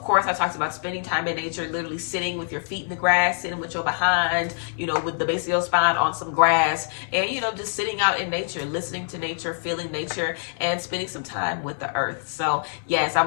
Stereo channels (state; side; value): silent; right; digital silence